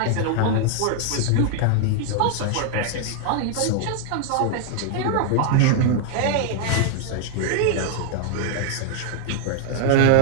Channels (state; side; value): different; both; correlation -0.01